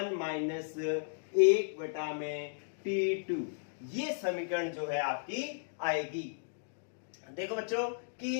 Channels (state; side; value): silent; right; digital silence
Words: माइनस 1 बटा में T2। ये समीकरण जो है आपकी आएगी। देखो बच्चों